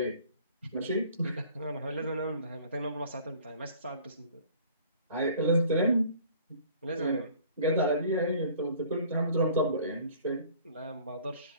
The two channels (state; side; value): inverted; both; correlation -0.52